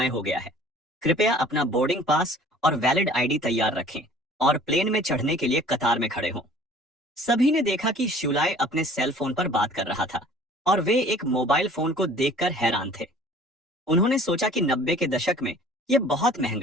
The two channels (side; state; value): both; normal; correlation 0.50